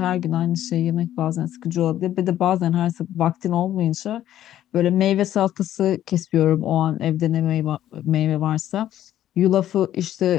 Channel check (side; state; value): right; quieter; 12.2 dB